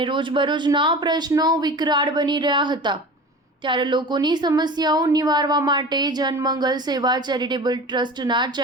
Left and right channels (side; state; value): both; normal; correlation 0.35